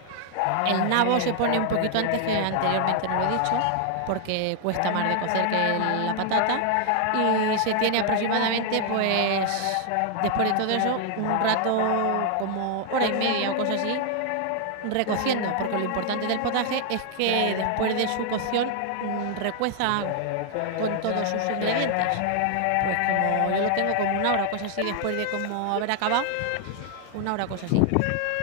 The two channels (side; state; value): both; different; correlation 0.00